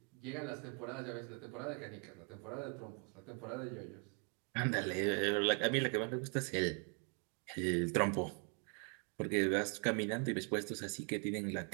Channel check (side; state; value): left; quieter; 37.2 dB